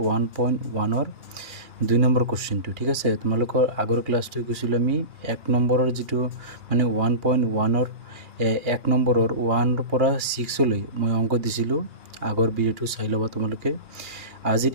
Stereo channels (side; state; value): left; late; 2.5 ms